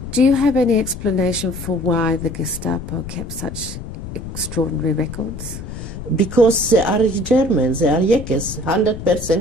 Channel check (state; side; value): noise; left; rumble, 10 dB below the sound